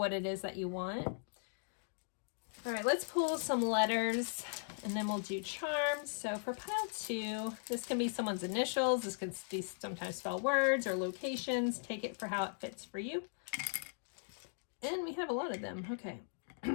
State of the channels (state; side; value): silent; right; digital silence